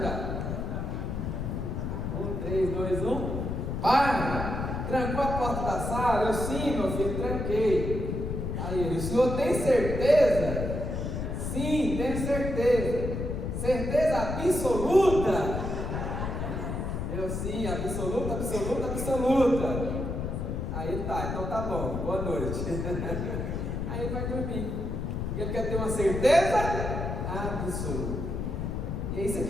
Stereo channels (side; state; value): left; noise; rumble, 3 dB below the sound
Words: já. 1, 3, 2, 1. Pai, trancou a porta da sala? Eu: sim, meu filho, tranquei. Aí ele: o senhor tem certeza? Sim, tenho certeza. Certeza absoluta? Eu: sim, absoluta. Aí ele: tá, então tá bom, boa noite. Aí ele vai dormir, porque ele quer ter uma certeza absoluta. E é isso